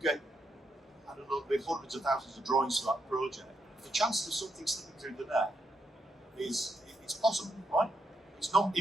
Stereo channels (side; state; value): both; normal; correlation 0.80